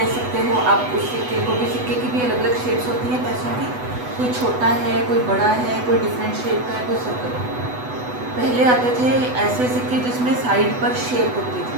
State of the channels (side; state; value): left; late; 8.1 ms